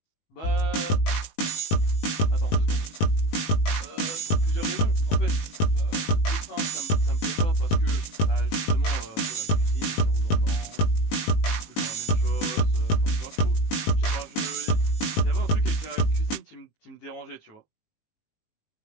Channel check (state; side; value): late; right; 19 ms